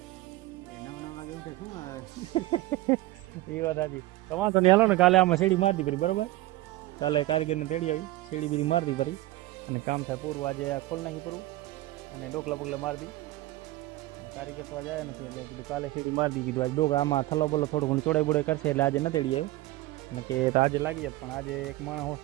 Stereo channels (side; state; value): left; quieter; 17.8 dB